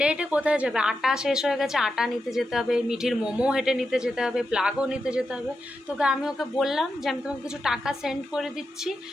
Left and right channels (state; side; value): normal; both; correlation 0.88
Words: হেঁটে কোথায় যাবে, আটা শেষ হয়ে গেছে, আটা নিতে যেতে হবে, মিঠির মোমো হেঁটে নিতে যেতে হবে, প্লাগও নিতে যেতে হবে। তোকে আমি ওকে বললাম যে আমি তোমাকে কিছু টাকা সেন্ড করে দিচ্ছি,